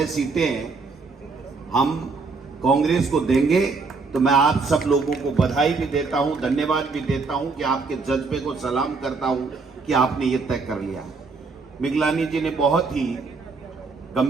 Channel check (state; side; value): quieter; left; 4.3 dB